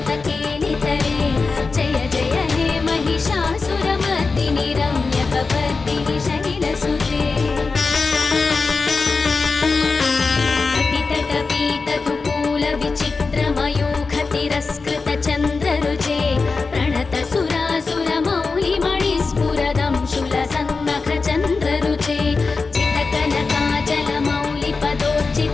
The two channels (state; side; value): quieter; right; 4.3 dB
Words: केलितरे जय जय हे महिषासुरमर्दिनि रम्यकपर्दिनि शैलसुते कटितटपीतकुकूल विचित्रमयूखतिरस्कृत चन्द्ररुचे प्रणत सुरासुरमौलिमणिस्फुरदं शूलसन्नख चन्द्ररुचे